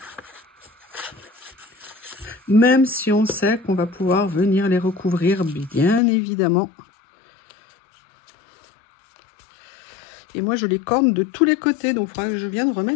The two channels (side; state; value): right; drops out; at 6.0 s